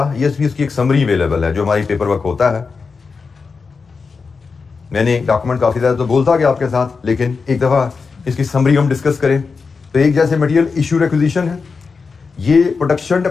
ये भी इसकी एक समरी अवेलेबल है जो हमारी पेपर वर्क होता है। मैंने डॉक्यूमेंट काफी ज्यादा तो बोलता गया आपके साथ, लेकिन एक दफा इसकी समरी हम डिस्कस करें तो एक जैसे मटेरियल इशू रिक्विजिशन है, ये प्रोडक्शन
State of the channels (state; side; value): quieter; right; 4.8 dB